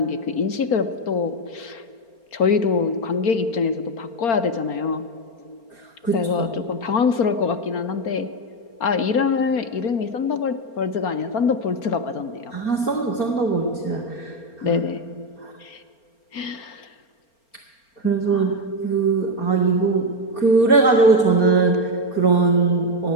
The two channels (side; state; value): right; late; 4.4 ms